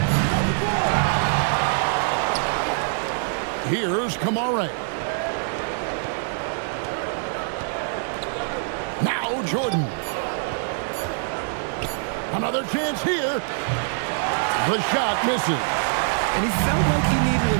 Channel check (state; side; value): silent; left; digital silence